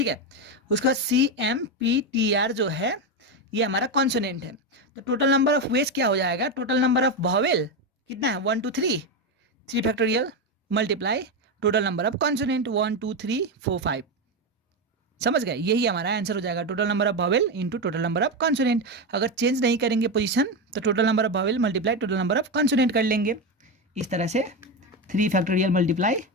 है। उसके बाद CMPTR जो है ये हमारा कॉन्सोनेंट है। तो टोटल नंबर ऑफ वेज क्या हो जाएगा, टोटल नंबर ऑफ वॉवेल कितना है, 1 2 3 factorial multiply total number of consonant 1 2 3 4 5। समझ गए, यही हमारा आंसर हो जाएगा, total number of vowel into total number of consonant. अगर चेंज नहीं करेंगे पोजीशन तो total number of vowel multiply total number of consonant कर लेंगे। इस तरह से 3 फैक्टोरियल मल्टीप्लाई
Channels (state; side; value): normal; both; correlation 0.12